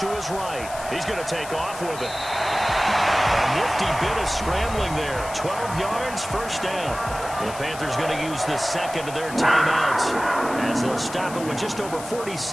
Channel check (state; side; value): noise; left; hiss, 13 dB below the sound